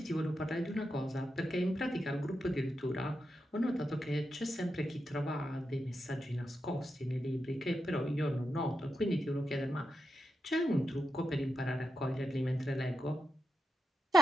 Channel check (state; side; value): normal; both; correlation 0.87